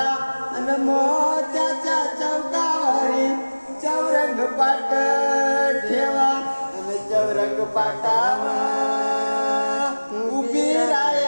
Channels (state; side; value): inverted; both; correlation -1.00